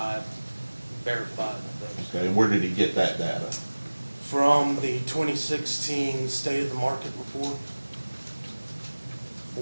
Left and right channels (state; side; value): inverted; both; correlation -1.00